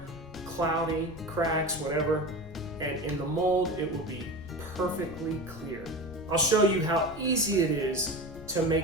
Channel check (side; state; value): left; noise; rumble, 17 dB below the sound